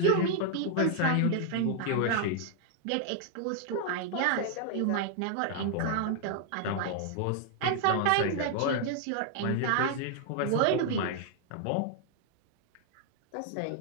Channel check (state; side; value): different; both; correlation 0.00